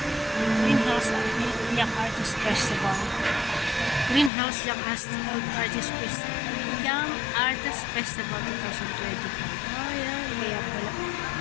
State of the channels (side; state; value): right; drops out; at 4.3 s